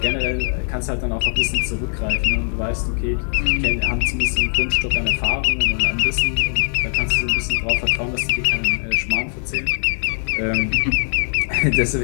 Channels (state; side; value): silent; right; 65 dB below the other